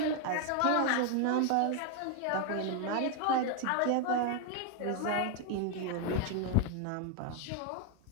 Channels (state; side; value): different; both; correlation 0.01